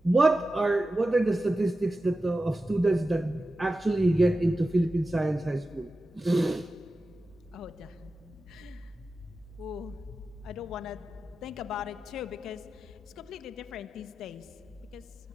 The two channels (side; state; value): both; normal; correlation 0.93